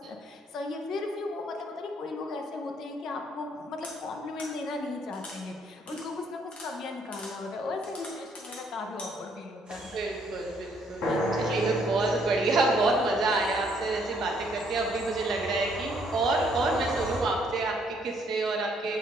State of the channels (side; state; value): both; normal; correlation 0.67